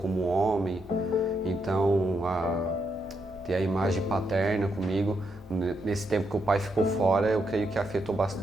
homem. Então, ter a imagem paterna comigo, nesse tempo que o pai ficou fora, eu creio que afetou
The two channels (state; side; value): normal; both; correlation 0.80